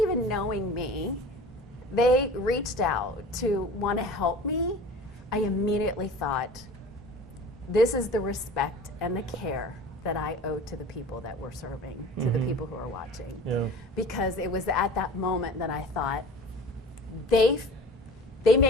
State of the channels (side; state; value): both; normal; correlation 0.40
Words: knowing me, they reached out to want to help me, I immediately thought, this is the respect and the care that I owe to the people that we're serving, to the people who are watching. Yeah. Because it was at that moment that I thought, they